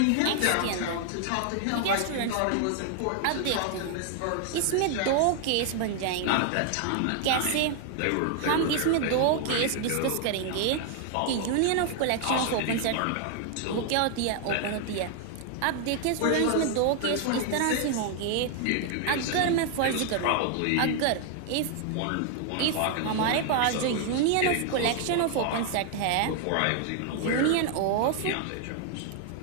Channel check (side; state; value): both; different; correlation 0.00